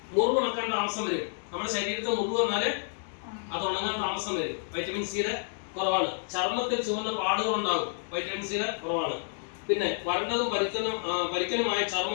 മുറിവ് ഉണക്കാൻ താമസം വരും. നമ്മുടെ ശരീരത്തിൽ മുറിവ് വന്നാല് അത് ഉണങ്ങാൻ താമസം വരും. വൈറ്റമിൻ സിയുടെ കുറവാണ്. ചർമ്മത്തിൽ ചുവന്ന പാടുകൾ ഉണ്ടാകും, വൈറ്റമിൻ സിയുടെ കുറവാണ്. പിന്നെ വരണ്ടതും പരിക്കനുമായ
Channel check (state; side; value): silent; right; digital silence